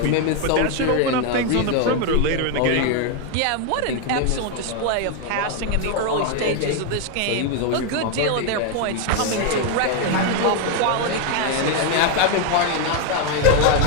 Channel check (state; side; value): different; both; correlation 0.01